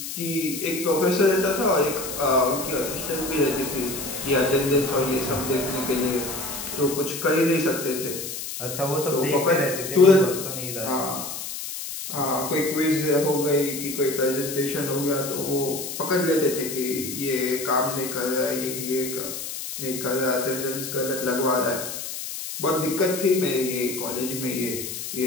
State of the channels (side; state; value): left; noise; hiss, 7 dB below the sound